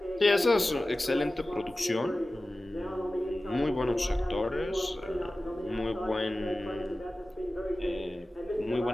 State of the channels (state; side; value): normal; both; correlation 0.96